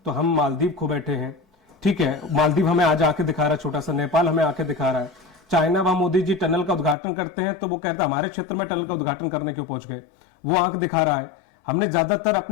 तो हम मालदीव खो बैठे हैं। ठीक है, मालदीव हमें आज आके दिखा रहा है, छोटा सा नेपाल हमें आके दिखा रहा है। चाइना, वहां मोदी जी टनल का उद्घाटन करते हैं तो वो कहता है हमारे क्षेत्र में टनल का उद्घाटन करने क्यों पहुंच गए, वो आंख दिखा रहा है। हमने ज्यादातर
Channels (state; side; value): drops out; right; at 7.0 s